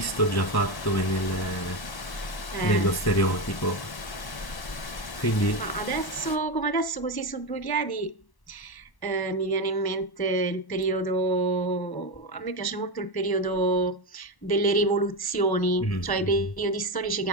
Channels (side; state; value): right; late; 1.1 ms